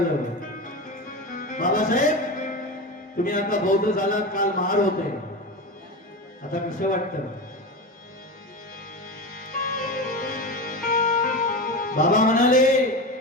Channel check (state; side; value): normal; both; correlation 0.23